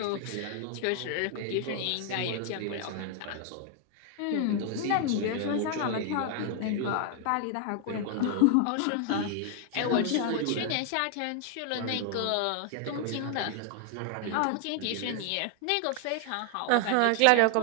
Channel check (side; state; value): both; different; correlation 0.00